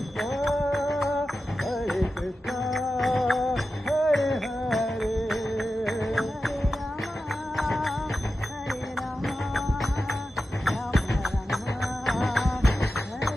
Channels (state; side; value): normal; both; correlation 0.92